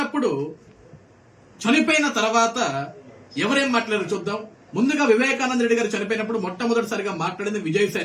తర్వాత ఎవరేం మాట్లాడారు చూద్దాం. ముందుగా వివేకానంద రెడ్డి గారు చనిపోయినప్పుడు మొట్టమొదటిసారిగా మాట్లాడింది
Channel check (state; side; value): identical; both; correlation 1.00